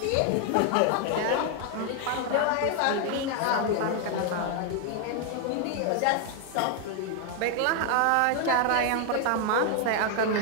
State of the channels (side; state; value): both; different; correlation 0.00